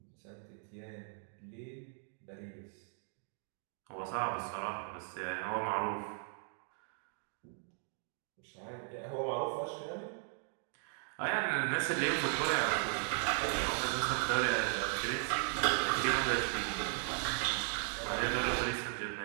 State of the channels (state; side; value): silent; left; 53 dB below the other